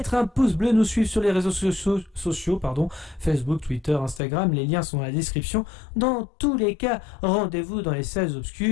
un pouce bleu, nous suivre sur les réseaux sociaux, Facebook, Twitter, Instagram. Les liens sont dans la description. Dans tous les cas, rendez-vous dans les salles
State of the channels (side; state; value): right; drops out; at 4.2 s